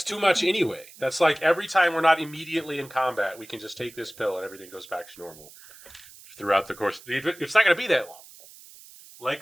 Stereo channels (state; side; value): noise; right; hiss, 20 dB below the sound